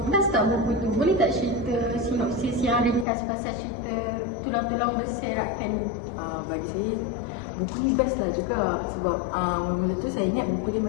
best tak buku tu? Boleh tak cerita sinopsis yang ringkas pasal cerita Tulang-Tulang Berserakan ni? Bagi saya, buku ni best lah juga. Sebab mula tu saya ingat buku dia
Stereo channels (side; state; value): right; drops out; at 3.1 s